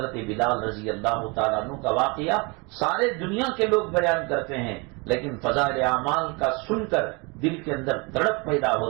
بلال رضی اللہ تعالیٰ عنہ کا واقعہ سارے دنیا کے لوگ بیان کرتے ہیں، لیکن فضائل اعمال کا سن کر دل کے اندر تڑپ پیدا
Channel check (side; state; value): left; quieter; 29.2 dB